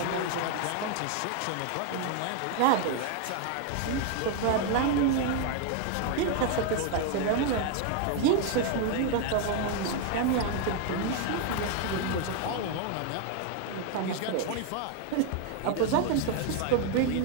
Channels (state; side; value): different; both; correlation 0.01